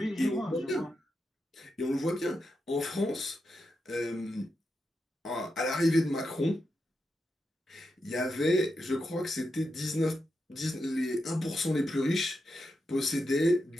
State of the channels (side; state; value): both; normal; correlation 0.86